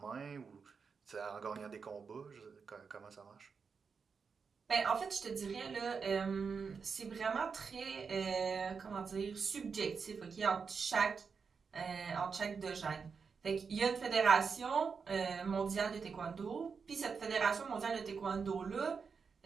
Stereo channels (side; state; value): left; quieter; 5.6 dB